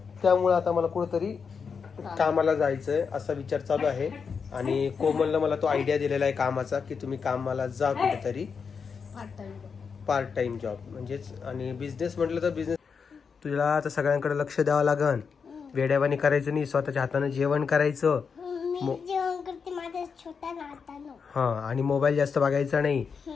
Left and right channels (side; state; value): right; quieter; 5.9 dB